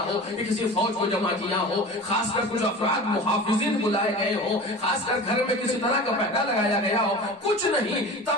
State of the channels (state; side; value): normal; both; correlation 0.35